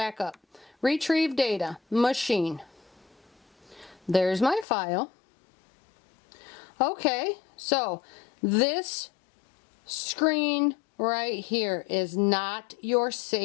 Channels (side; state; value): right; drops out; at 4.7 s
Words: up. Retrieve data, machine. There's my file. Okay, so this screen right here is not your